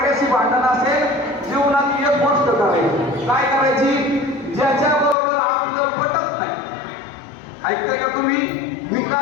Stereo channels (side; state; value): right; drops out; at 5.2 s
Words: भांडण असेल, जीवनात एक गोष्ट करायची. काय करायची? ज्याच्याबरोबर आपलं पटत नाही. ऐकताय का तुम्ही? मी